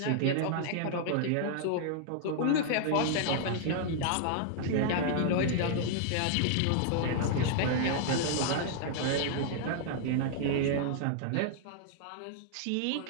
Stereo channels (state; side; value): different; both; correlation -0.01